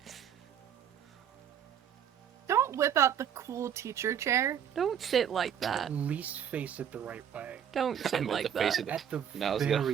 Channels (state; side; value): quieter; left; 8.8 dB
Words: Don't whip out the cool teacher chair. Don't sit like that. At least face it the right way. Don't I sit meant like to face that. it. At the No, I was,